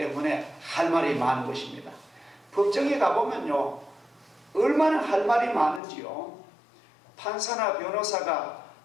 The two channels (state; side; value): drops out; right; at 5.8 s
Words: 할 말이 많은 것입니다. 법정에 가보면요 얼마나 할 말이 많은지요. 판사나 변호사가